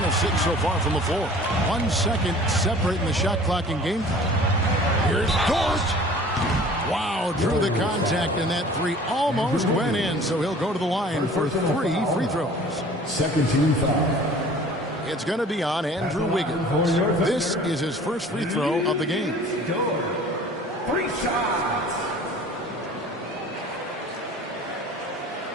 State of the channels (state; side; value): normal; both; correlation 0.47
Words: of 6 so far from the floor. 1 second separating the shot clock and game time. Here's Dort. Wow, drew the contact, and that 3 almost went in, so he'll go to the line for 3 free throws. Second team foul. It's going to be on Andrew Wiggins. This is his first free throw of the game. 3 shots.